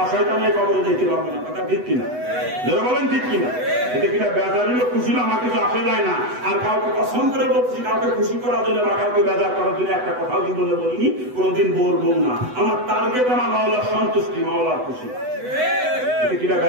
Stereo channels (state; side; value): late; left; 8.0 ms